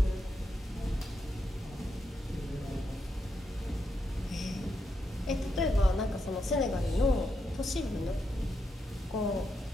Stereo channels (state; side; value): normal; both; correlation 0.83